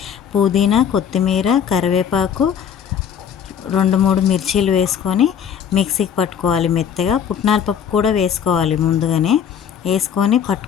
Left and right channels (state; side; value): quieter; right; 8.2 dB